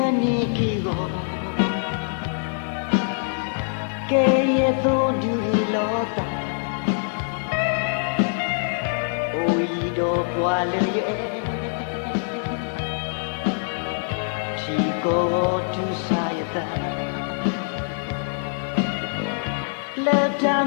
Keye to dulota Oido kwale Chico tu sayata Leta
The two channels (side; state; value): right; silent; digital silence